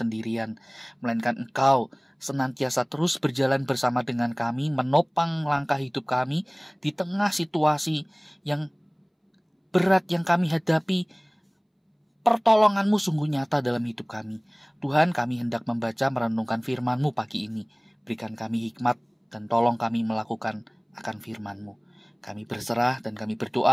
melainkan Engkau senantiasa terus berjalan bersama dengan kami, menopang langkah hidup kami di tengah situasi yang berat yang kami hadapi. Pertolongan-Mu sungguh nyata dalam hidup kami. Tuhan, kami hendak membaca merenungkan firman-Mu pagi ini. Berikan kami hikmat dan tolong kami melakukan akan firman-Mu. Kami berserah dan kami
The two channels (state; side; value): identical; both; correlation 1.00